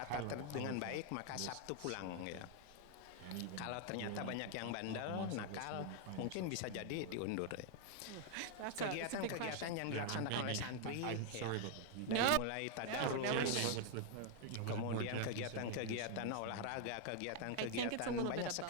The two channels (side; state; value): both; different; correlation 0.00